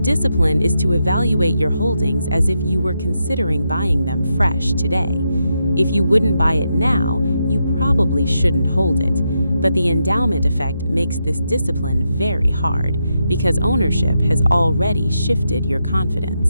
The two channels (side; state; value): both; inverted; correlation -0.84